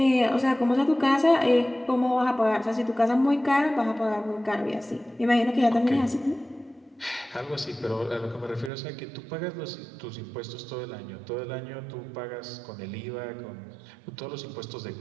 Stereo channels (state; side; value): drops out; left; at 8.7 s